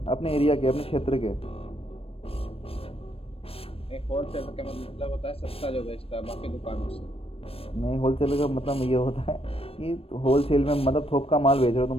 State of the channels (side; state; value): right; late; 0.28 ms